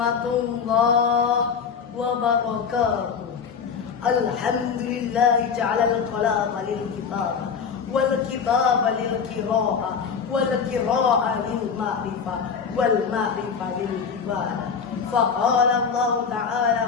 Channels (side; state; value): right; quieter; 6.2 dB